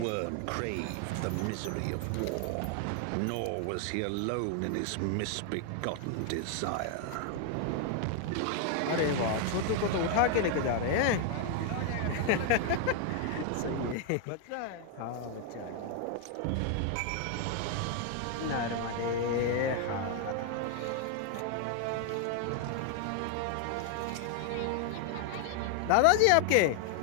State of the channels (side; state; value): both; different; correlation 0.00